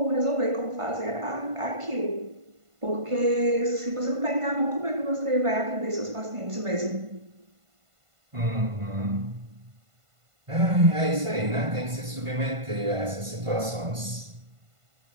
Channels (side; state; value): left; late; 1.5 ms